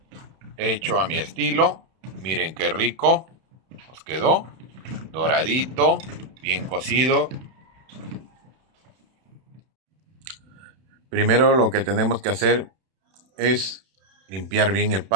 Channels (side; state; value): left; late; 31 ms